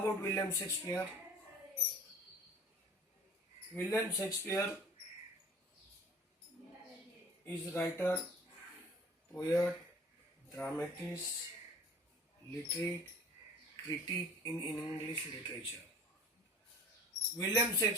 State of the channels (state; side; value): normal; both; correlation 0.45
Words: William Shakespeare? William Shakespeare is writer, poet, dramatist, literate, critic in English literature. William